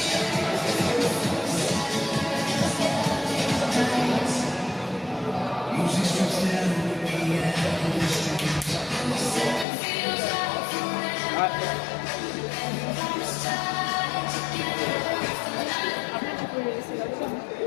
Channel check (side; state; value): right; drops out; at 9.7 s